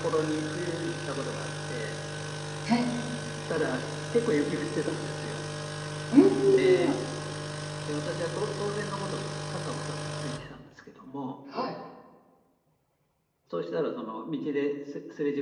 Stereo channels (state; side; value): identical; both; correlation 1.00